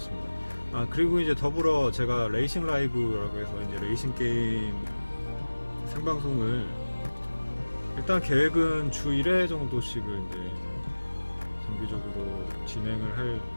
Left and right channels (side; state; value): both; inverted; correlation -1.00